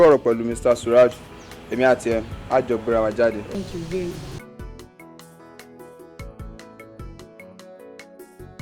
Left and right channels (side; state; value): both; identical; correlation 1.00